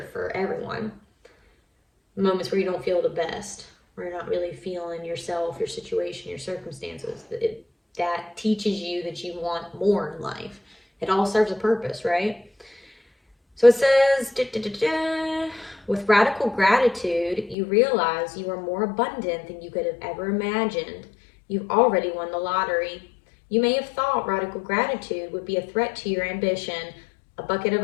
for everyone. Moments where you don't feel the best, where you're not really feeling yourself, your situation, your circumstances. That teaches you that you want more in life. It all serves a purpose, right? So it says, with radical gratitude, you realize you are more abundant than you could have ever imagined. You've already won the lottery. You may have thought radical gratitude would be a threat to your ambition, a bucket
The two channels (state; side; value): drops out; right; at 17.6 s